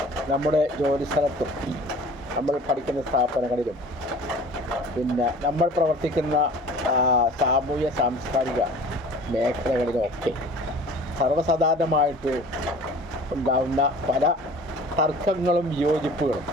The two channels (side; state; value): both; normal; correlation 0.45